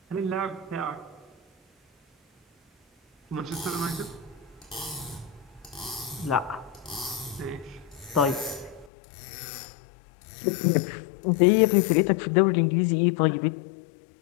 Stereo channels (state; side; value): drops out; right; at 8.9 s